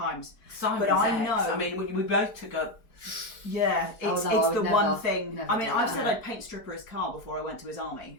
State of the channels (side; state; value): right; late; 4.5 ms